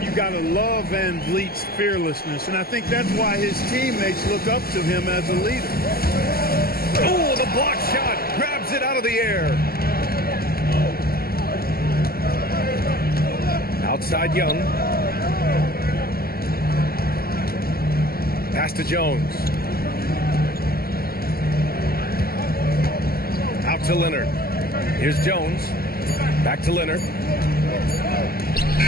You got to love Van Vliet's fearlessness, and I think that's why his teammates look up to him as a leader. Oh, the block shot grabs it out of the air. Outside Young. Pass to Jones. Out to Leonard. Here's Jones. Back to Leonard.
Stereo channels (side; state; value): right; late; 0.44 ms